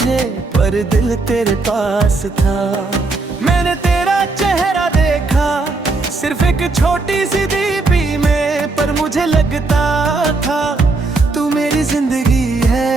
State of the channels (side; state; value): left; quieter; 3.6 dB